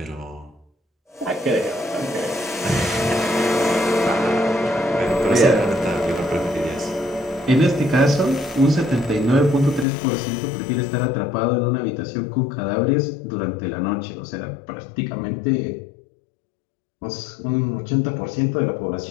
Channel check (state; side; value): drops out; right; at 9.9 s